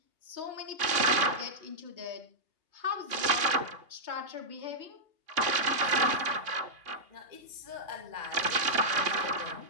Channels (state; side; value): late; left; 2.8 ms